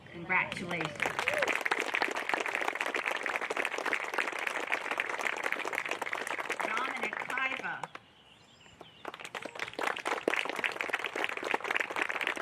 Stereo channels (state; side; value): identical; both; correlation 1.00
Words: Congratulations. Dominic Paiva.